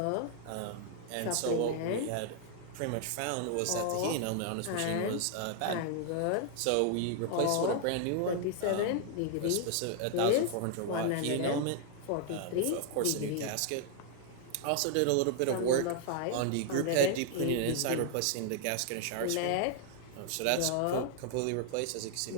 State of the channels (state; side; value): different; both; correlation 0.00